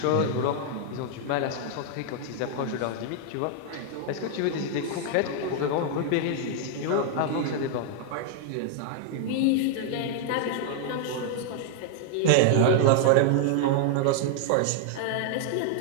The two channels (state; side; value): different; both; correlation 0.00